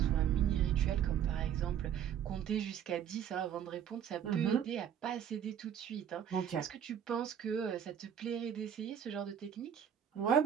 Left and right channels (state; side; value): quieter; left; 9.1 dB